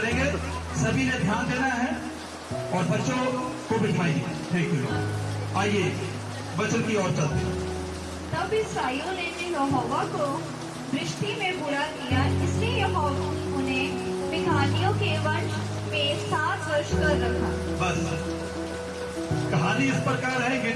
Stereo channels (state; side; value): identical; both; correlation 1.00